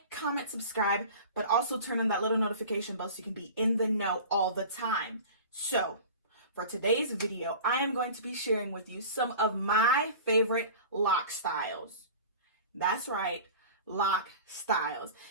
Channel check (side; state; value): both; inverted; correlation -0.38